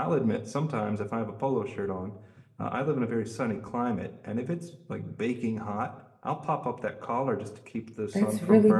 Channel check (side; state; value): both; identical; correlation 1.00